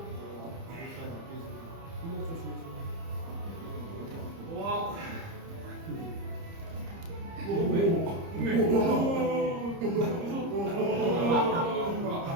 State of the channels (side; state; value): left; late; 30 ms